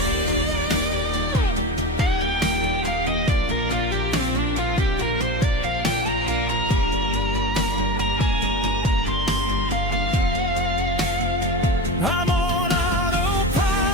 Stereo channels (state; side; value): normal; both; correlation 0.27